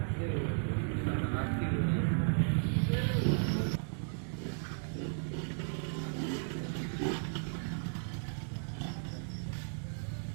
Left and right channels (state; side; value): silent; left; digital silence